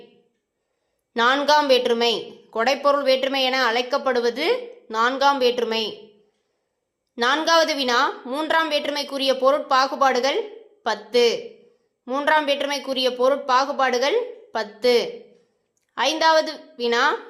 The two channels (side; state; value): both; identical; correlation 1.00